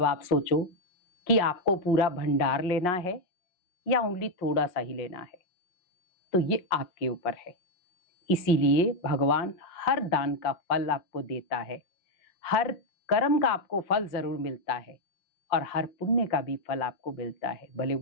आप सोचो कि आपको पूरा भंडार लेना है या ओनली थोड़ा सा ही लेना है, तो ये आपके ऊपर है। इसीलिए भगवान हर दान का फल आपको देता है, हर कर्म का आपको फल जरूर मिलता है और हर पुण्य का भी फल आपको मिलता है, भले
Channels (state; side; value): late; right; 5.6 ms